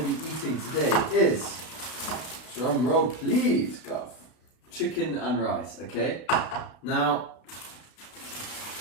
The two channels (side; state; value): right; late; 32 ms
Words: be eating today is, drum roll please, Gov, chicken and rice, okay? Now,